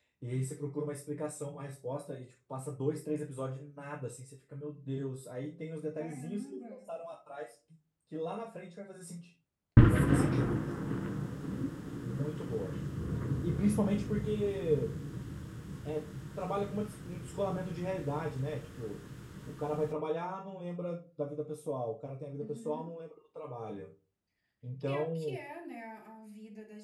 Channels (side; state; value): both; identical; correlation 1.00